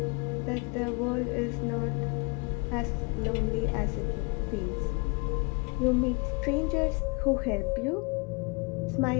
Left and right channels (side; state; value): right; quieter; 29.7 dB